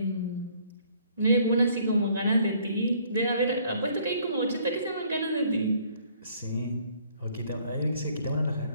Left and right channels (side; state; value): both; inverted; correlation -0.62